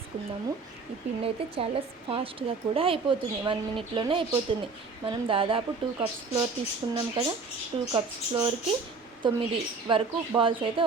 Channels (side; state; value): left; quieter; 4.3 dB